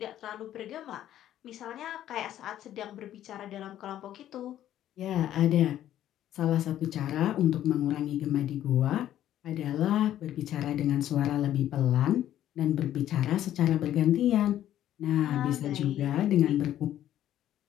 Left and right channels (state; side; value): quieter; right; 12.0 dB